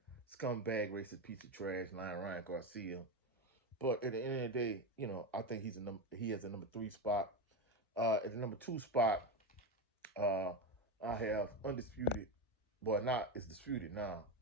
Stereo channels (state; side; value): normal; both; correlation 0.15